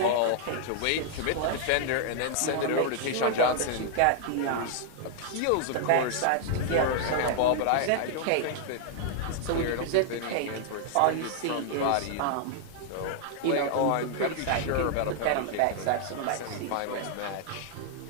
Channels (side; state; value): both; different; correlation 0.00